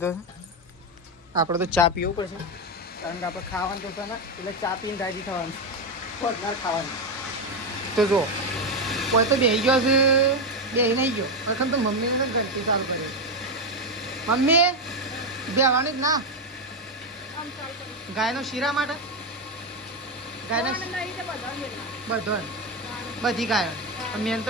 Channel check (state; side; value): normal; both; correlation 0.09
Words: છે. આપણે તો ચા પીવું પડશે કારણ કે આપણે ખાવાનું તો છે ને એટલે ચા પીને રાજી થવાનું, ખોટનાર ખાવાનું. તો જો કોઈ તો બેસી ગયો છે, બેસી નહીં ગયો પ્રથમ તો મમ્મીને તો ઘંટી ચાલુ કરી. મમ્મી બેવાની જ ના ગાયનો શીરા માટે, ગાયના બધો બધી ગાયો મેન